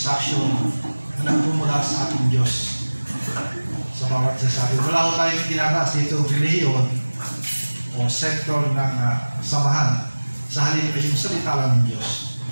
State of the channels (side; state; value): both; inverted; correlation -1.00